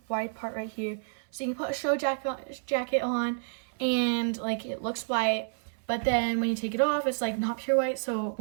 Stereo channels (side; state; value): left; silent; 55 dB below the other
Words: white part right here, so you can put a show jacket on, and like it looks white, but then when you take it off, it's like not pure white, so it